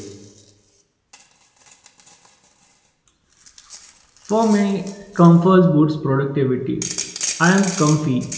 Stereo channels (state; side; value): identical; both; correlation 1.00